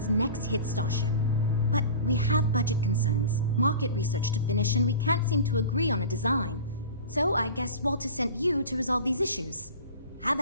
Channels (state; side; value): inverted; both; correlation -0.36